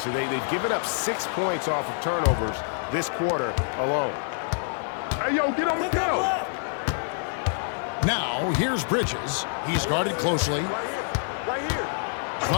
They've given up 6 points off of turnovers this quarter alone. Hey, yo, get on the go. Now, here's Bridges. He's guarded closely.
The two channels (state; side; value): silent; right; digital silence